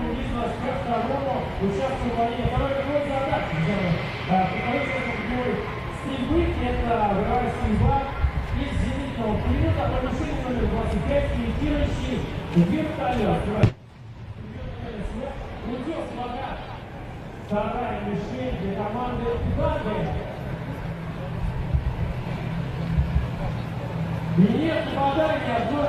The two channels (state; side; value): identical; both; correlation 1.00